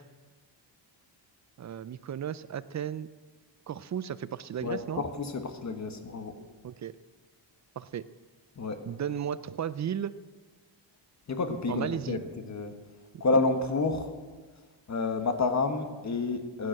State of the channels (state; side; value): normal; both; correlation -0.17